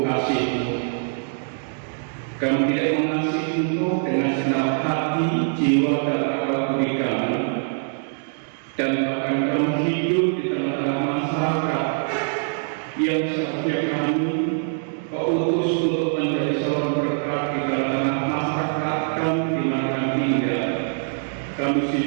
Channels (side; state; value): left; silent; digital silence